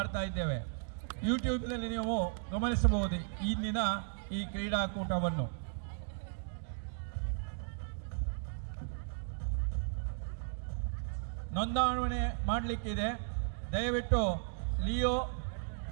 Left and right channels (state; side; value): silent; left; digital silence